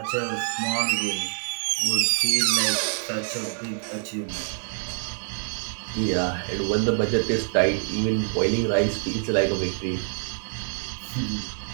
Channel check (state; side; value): silent; left; 61 dB below the other